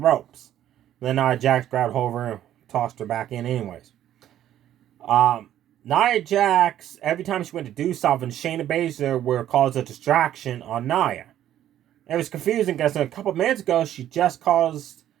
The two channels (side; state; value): left; quieter; 11.7 dB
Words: Then Nia Jax grabbed hold of her and tossed her back in anyways. Nia Jax, every time she went to do something, Shayna Baszler would cause a distraction on Nia. It was confusing because a couple of minutes ago, she just caused